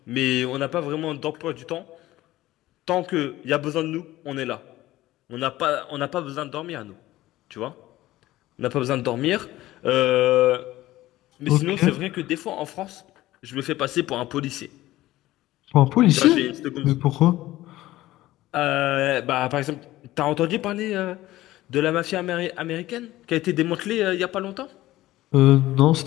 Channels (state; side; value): quieter; right; 16.2 dB